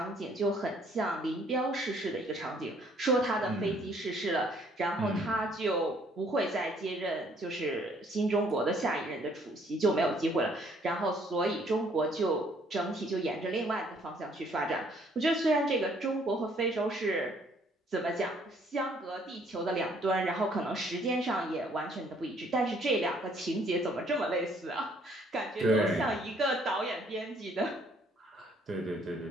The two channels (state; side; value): normal; both; correlation 0.63